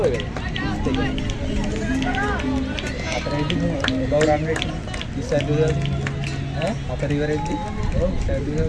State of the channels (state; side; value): identical; both; correlation 1.00